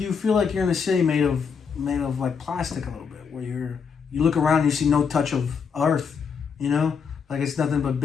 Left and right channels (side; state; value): right; quieter; 6.2 dB